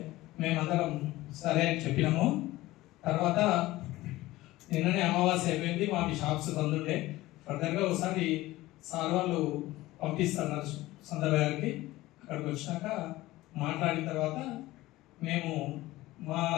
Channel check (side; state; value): right; quieter; 17.8 dB